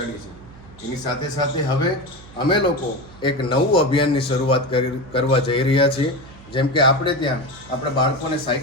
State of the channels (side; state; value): right; noise; hum, 21 dB below the sound